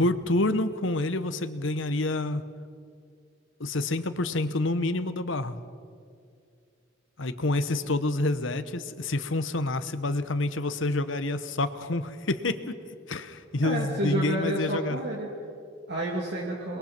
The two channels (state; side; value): normal; both; correlation 0.45